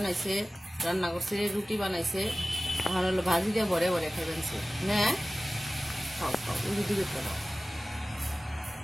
রান্না করছে, রুটি বানাইছে, এখন হলো ভাজি দিয়ে ভরে ভরে খাইবেন না। খাও খাও, রুটি দিয়ে খাও।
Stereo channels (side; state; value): both; normal; correlation 0.97